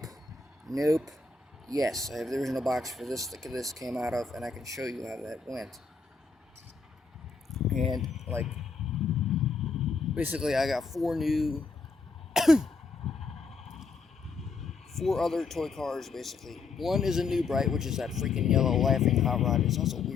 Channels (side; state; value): right; quieter; 4.5 dB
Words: Yes, I have the original box for this that this came out of, and I can show you how that went. And like basically I got 4 other toy cars, basically. One is a new bright, which is that freaking yellow laughing hot rod. It's also